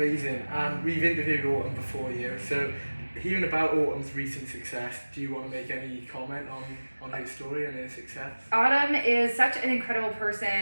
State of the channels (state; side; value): inverted; both; correlation -1.00